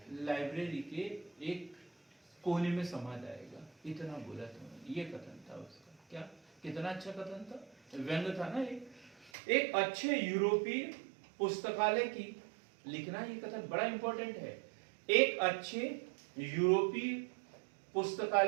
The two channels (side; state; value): left; drops out; at 9.3 s